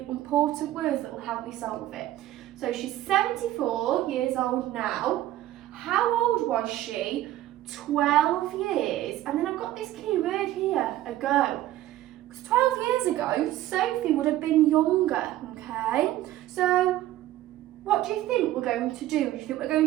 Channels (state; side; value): quieter; left; 14.3 dB